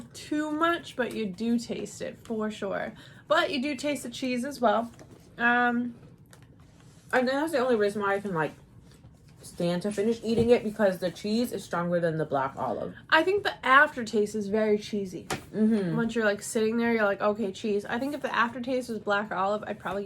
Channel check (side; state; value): both; identical; correlation 1.00